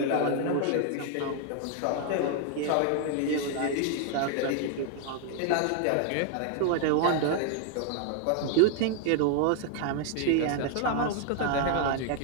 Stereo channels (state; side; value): different; both; correlation 0.00